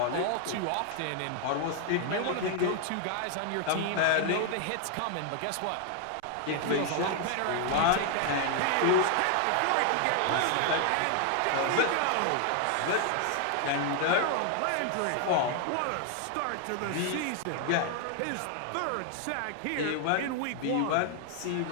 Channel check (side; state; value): both; different; correlation 0.00